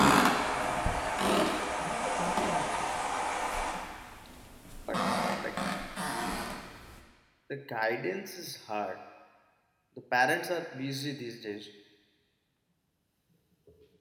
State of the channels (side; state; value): both; identical; correlation 1.00